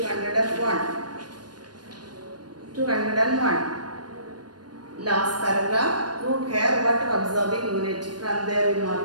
201. Last paragraph. Root hair, water absorbing unit. From there we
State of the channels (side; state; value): left; late; 0.70 ms